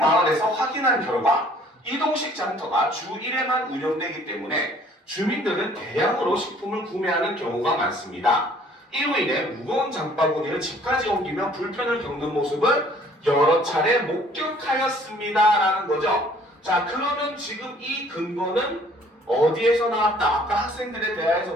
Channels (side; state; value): both; normal; correlation 0.57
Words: 확인한 결과 이동식 장터가 주 1회만 운영되기 때문에 주민들은 대량으로 식품을 구매하는 경우가 많습니다. 이로 인해 무거운 장바구니를 집까지 옮기며 불편을 겪는 모습을 여러 차례 목격하였습니다 라는 거죠. 자, 그러면 지금 이 근거는 어디에서 나왔다? 아까 학생들의 대화에서